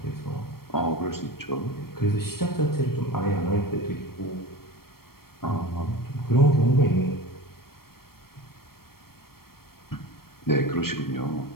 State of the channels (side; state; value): right; late; 0.94 ms